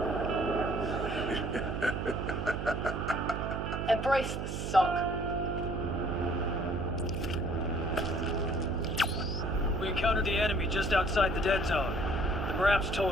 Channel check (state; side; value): noise; right; hum, 4 dB below the sound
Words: Embrace the suck. We encountered the enemy just outside the dead zone. The Marap's